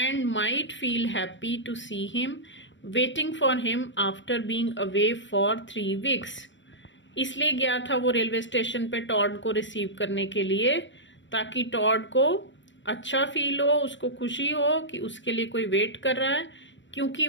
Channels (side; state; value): right; late; 0.54 ms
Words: might feel happy to see him waiting for him after being away for 3 weeks. इसलिए गया था वो railway station पे Tod को receive करने के लिए ताकि टॉड को अच्छा फील हो, उसको खुशी हो कि उसके लिए कोई वेट कर रहा है क्योंकि